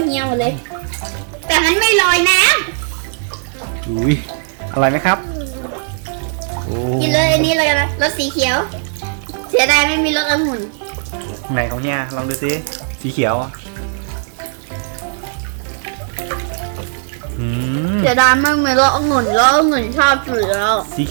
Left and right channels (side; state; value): left; silent; 65 dB below the other